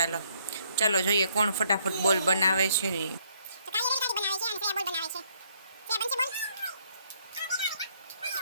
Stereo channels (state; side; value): inverted; both; correlation -0.68